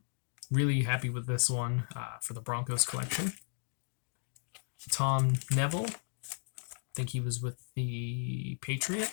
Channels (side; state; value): right; silent; 55 dB below the other